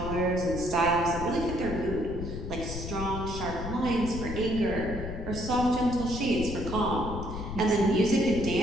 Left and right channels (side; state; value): left; noise; rumble, 7 dB below the sound